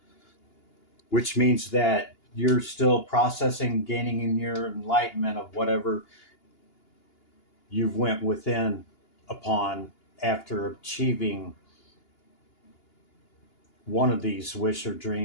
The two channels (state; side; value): late; right; 2.8 ms